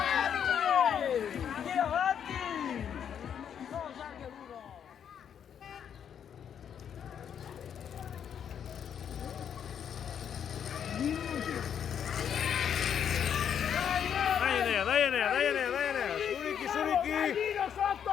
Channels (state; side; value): quieter; right; 8.5 dB